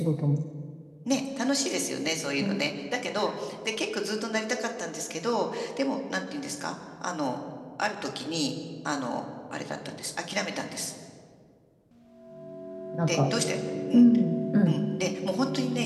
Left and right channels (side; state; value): both; identical; correlation 1.00